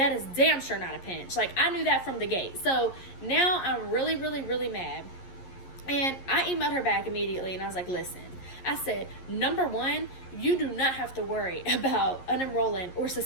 is damn sure not a pinch. Like, I knew that from the gate. So now I'm really, really, really mad. And I emailed her back immediately, and I was like, listen. I said, number one, you do not have to worry about unenrolling or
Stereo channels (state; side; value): late; right; 11 ms